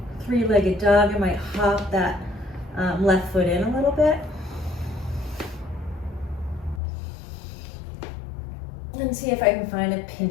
Three-legged dog. I might hop that left foot in a little bit. And see if I can find a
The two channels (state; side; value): drops out; right; at 6.8 s